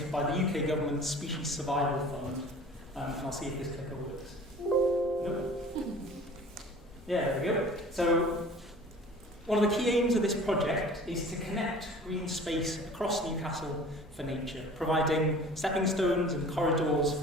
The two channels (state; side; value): normal; both; correlation 0.45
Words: by the UK government's Species Survival Fund. And I'll see if this clicker works. Nope. Yeah, there we go. So, one of the key aims of this project is to connect green space across Newcastle for nature, providing stepping stones and corridors